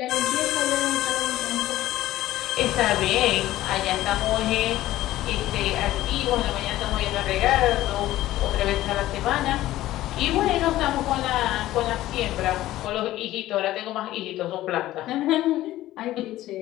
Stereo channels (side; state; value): right; quieter; 15.1 dB